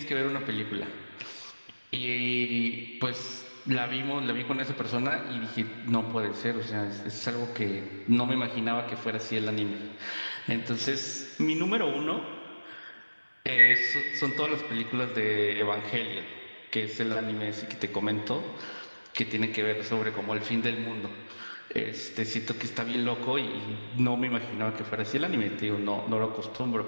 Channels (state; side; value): inverted; both; correlation -1.00